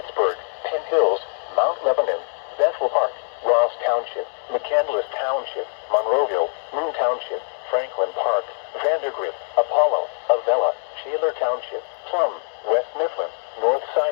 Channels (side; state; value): right; silent; 63 dB below the other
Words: Penn Hills, Mount Lebanon, Bethel Park, Ross Township, McCandless Township, Monroeville, Moon Township, Franklin Park, Vandergrift, Apollo, Avella, Shaler Township, Plum, West Mifflin,